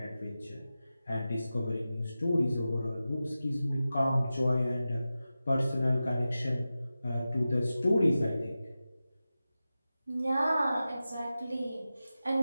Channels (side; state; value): both; inverted; correlation -0.94